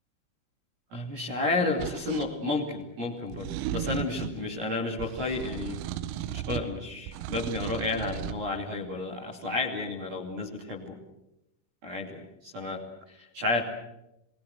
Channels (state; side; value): late; left; 17 ms